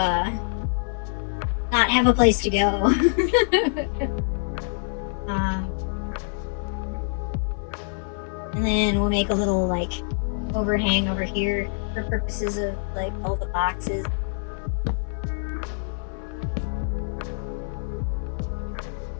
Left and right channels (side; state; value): right; silent; 61 dB below the other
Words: not have a place to go. And then we'll make a little like overhang over here for purposes of like all the boxes.